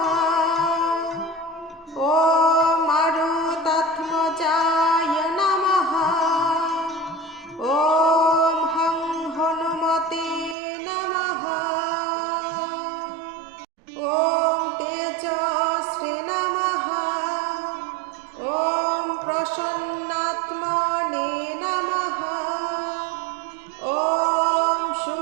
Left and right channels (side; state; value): left; drops out; at 10.6 s